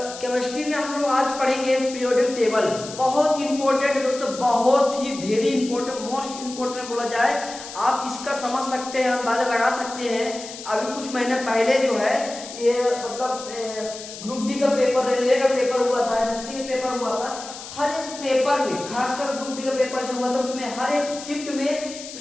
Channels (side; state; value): left; noise; hiss, 12 dB below the sound